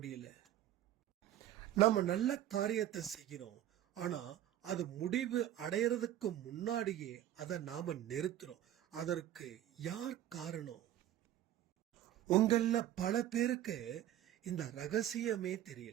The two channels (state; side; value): quieter; left; 12.3 dB